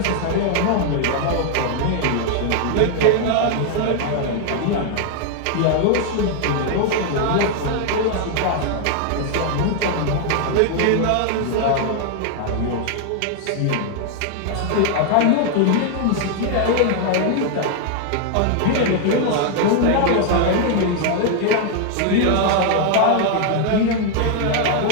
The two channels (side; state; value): both; different; correlation 0.00